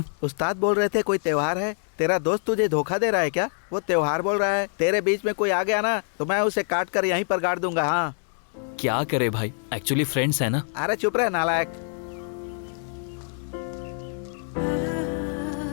उस्ताद बोल रहे थे कोई त्योहार है, तेरा दोस्त तुझे धोखा दे रहा है क्या? वो त्योहार बोल रहा है, तेरे बीच में कोई आ गया ना तो मैं उसे काट कर यहीं पर गाड़ दूंगा। हाँ क्या करे भाई, एक्चुअली फ्रेंड्स है ना। अरे चुप रहे नालायक।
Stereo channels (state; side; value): silent; right; 62 dB below the other